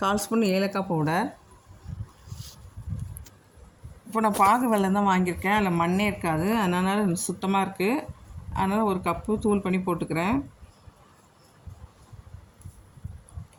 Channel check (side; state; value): both; identical; correlation 1.00